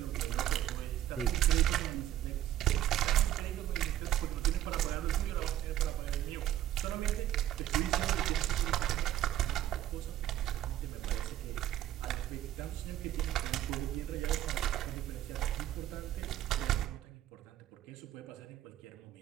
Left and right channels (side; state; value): left; quieter; 12.5 dB